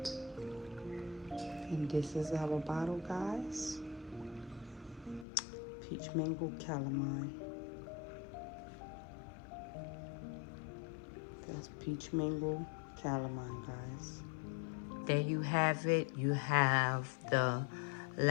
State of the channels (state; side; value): drops out; right; at 5.2 s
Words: And this is our bottle, guys. Peach mango calamine. That's peach mango calamine, guys. There you have it. You have the